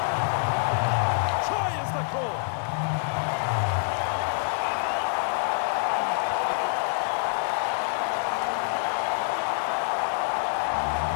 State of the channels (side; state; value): right; silent; 58 dB below the other